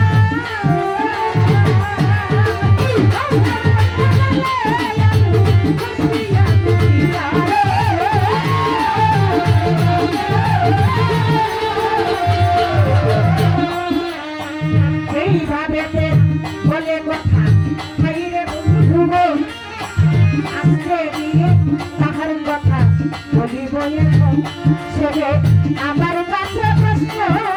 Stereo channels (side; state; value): both; identical; correlation 1.00